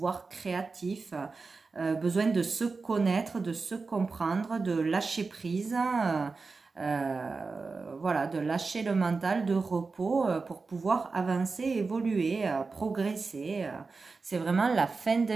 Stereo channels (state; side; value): quieter; left; 4.2 dB